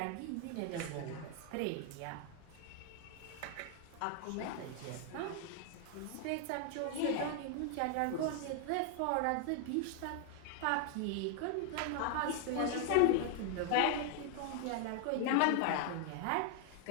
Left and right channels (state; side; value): different; both; correlation 0.00